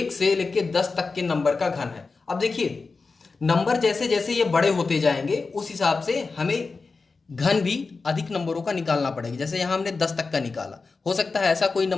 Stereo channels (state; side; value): quieter; right; 4.2 dB